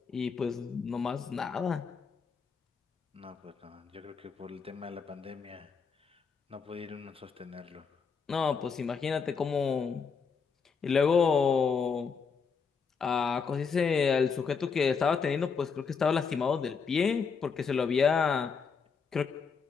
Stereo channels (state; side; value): quieter; right; 5.7 dB